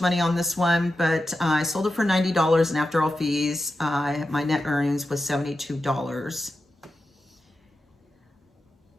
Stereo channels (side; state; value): both; normal; correlation 0.91